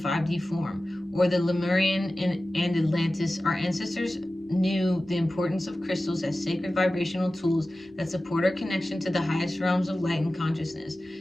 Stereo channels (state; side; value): normal; both; correlation 0.95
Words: form, or the Lemurian and Atlantis. Our ancestors knew the importance of crystals as sacred vibrational tools that support our connection to the highest realms of light and consciousness.